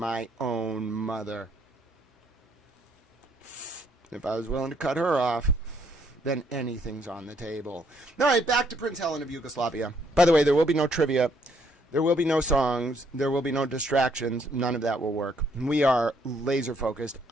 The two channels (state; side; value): normal; both; correlation 0.69